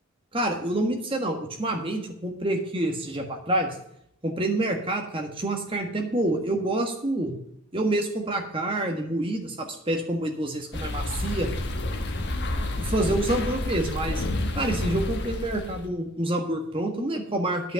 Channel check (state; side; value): normal; both; correlation 0.52